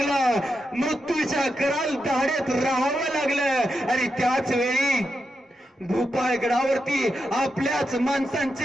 मृत्यूच्या कराल दाढेत राहावं लागलं आणि त्याच वेळी भूपाळगडावरती आपल्याच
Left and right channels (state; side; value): normal; both; correlation 0.86